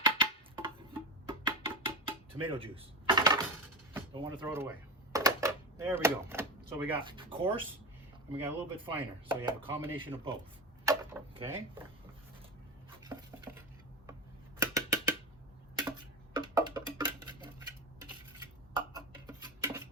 Tomato juice. Don't want to throw it away. There we go. So we got coarse and we got a little bit finer. So you have a combination of both. Okay.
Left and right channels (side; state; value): both; normal; correlation 0.20